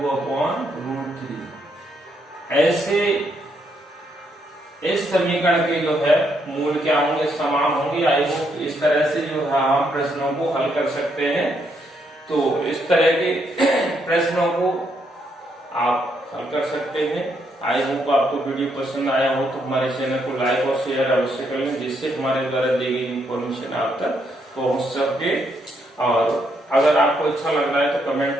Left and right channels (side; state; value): both; normal; correlation 0.76